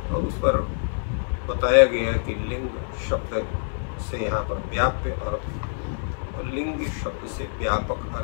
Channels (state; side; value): silent; right; digital silence